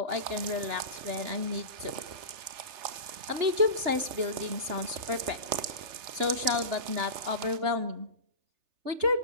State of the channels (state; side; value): late; left; 3.3 ms